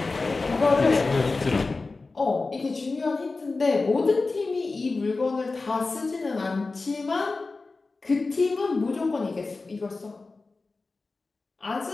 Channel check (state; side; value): quieter; right; 3.7 dB